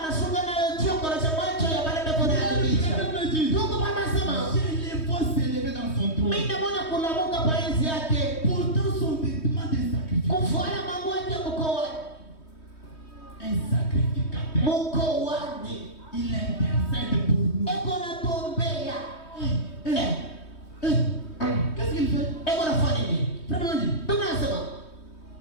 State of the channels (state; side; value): late; right; 3.2 ms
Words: nayo choko na macho ya baada kuna yabicha. Ndugu mama sema, Je les vois s'élever dans son trône. mimi naona kulamuka pa enzi yake. Pourtant son vêtement de sacrifice. Kufuata mambo yake mkoani. Un sacrificateur. Mkoani. Il intercède pour nous. Eko na tombea. Qu'est-ce qu'il fait? Eko na fanya nini? Frère, Biblia inasema,